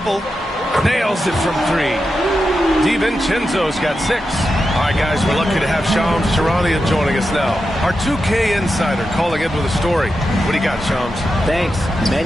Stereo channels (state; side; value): normal; both; correlation 0.89